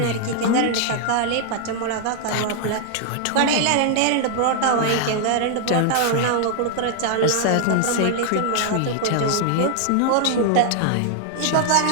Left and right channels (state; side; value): different; both; correlation 0.00